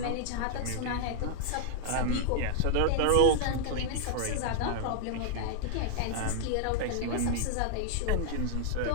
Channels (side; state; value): both; different; correlation 0.00